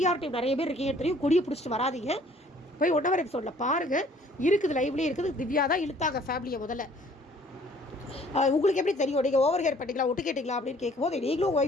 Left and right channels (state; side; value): normal; both; correlation 0.57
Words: டீம் நிறைய பேர் இருக்கீங்க தெரியும், கொடியை பிடிச்சிட்டு வராதிங்க, போய் 1 hour எபிசோடில் பாருங்கள், இருக்குது லைவ்லேயே இருக்குது. திவ்யா தான் இழுத்தாங்க ஃபேமிலியை முதல்ல. உங்களுக்கு எப்படி தெரியும், நீங்கள் ஓவர் ஹேர் பண்ணிங்களா, ஒட்டு கேட்டிங்களா அப்படின்னு கேட்கும்போது நீங்களும்